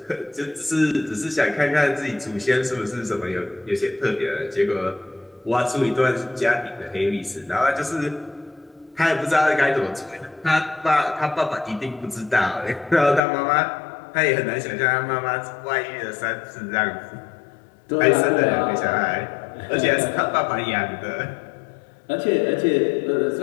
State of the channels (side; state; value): right; drops out; at 13.2 s